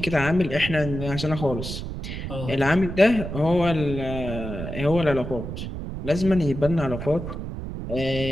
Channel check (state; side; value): noise; right; rumble, 7 dB below the sound